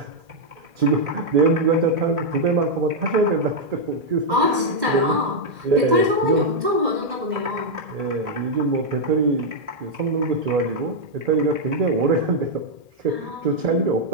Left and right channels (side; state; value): left; late; 1.7 ms